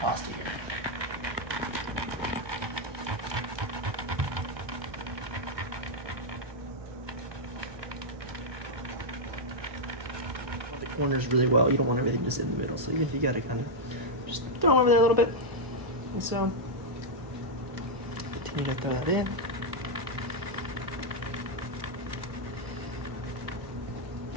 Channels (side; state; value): left; late; 1.2 ms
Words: here. The corners really well. You don't want everything just in the middle. So even if you got to kind of just throw them over there a little bit. And so continue to throw that in.